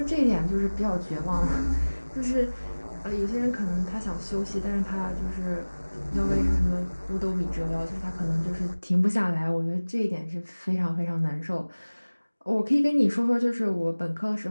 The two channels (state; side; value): inverted; both; correlation -1.00